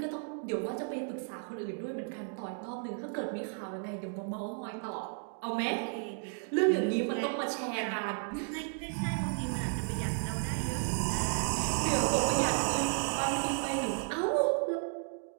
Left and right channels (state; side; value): silent; left; 55 dB below the other